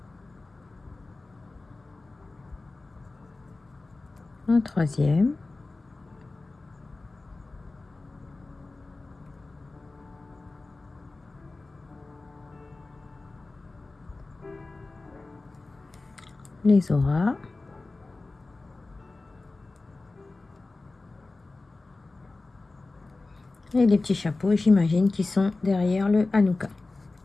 Un troisième. Les auras. Et les petits chapeaux, j'imagine, qui sont derrière le Hanouka.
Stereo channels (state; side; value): quieter; right; 3.3 dB